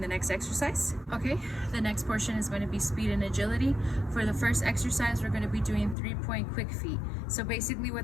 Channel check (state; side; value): drops out; right; at 6.0 s